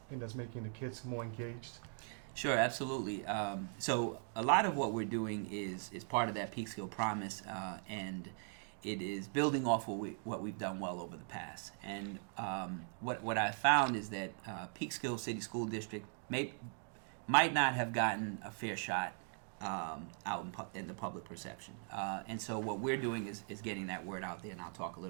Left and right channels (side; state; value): left; silent; 51 dB below the other